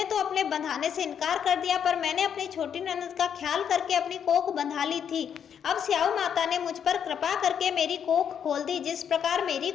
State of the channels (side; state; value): right; quieter; 8.2 dB